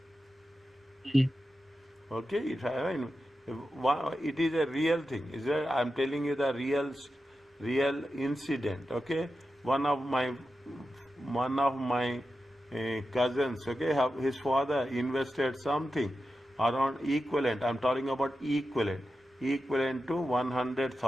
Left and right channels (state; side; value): normal; both; correlation 0.91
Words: Okay, it is a real thing. Is that I'm telling you the real incident. Okay, one of my cousins. Okay, his father invested something around equivalent. I'm talking about equivalent to